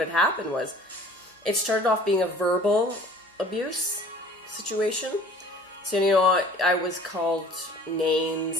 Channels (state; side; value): normal; both; correlation 0.49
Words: had happened was, it started off being a verbal abuse situation. So, I was called